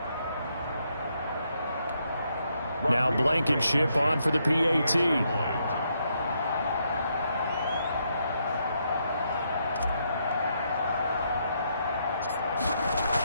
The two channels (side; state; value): both; inverted; correlation -0.77